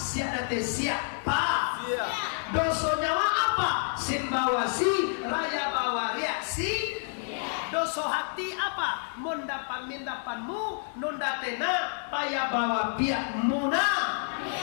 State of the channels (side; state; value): right; silent; 59 dB below the other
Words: date siapa? Dosa nyawa apa? Simbawasi raya bawa reaksi. Dosa hati apa? Mendapat mindapanmu nunda tena payah bawa pihak muna.